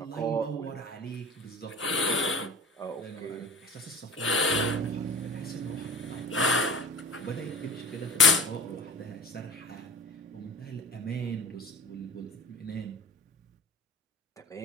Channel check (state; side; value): normal; both; correlation 0.38